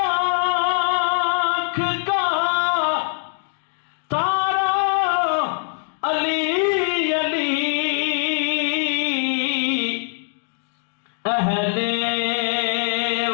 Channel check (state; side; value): silent; right; digital silence